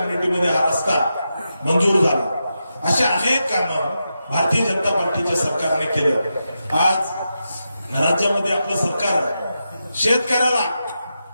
हा रस्ता मंजूर झाला. असे अनेक कामं भारतीय जनता पार्टीच्या सरकारने केलं. आज राज्यामध्ये आपलं सरकार शेतकऱ्याला,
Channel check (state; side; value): inverted; both; correlation -0.88